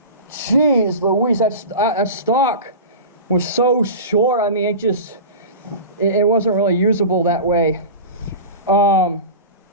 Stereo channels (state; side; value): inverted; both; correlation -0.30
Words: jeez Louise, that stock was so short. I mean, it wasn't really usable that way. But